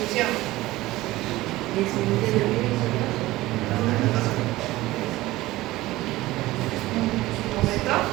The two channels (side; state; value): left; quieter; 17.9 dB